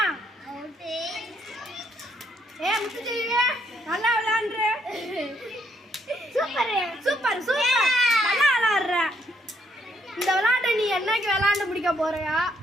நல்லா விளையாடுற. Super super super. நல்லா விளையாடுற. இந்த விளையாட்டை நீ என்னைக்கு விளையாண்டு முடிக்க போறியா?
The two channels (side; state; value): both; normal; correlation 0.72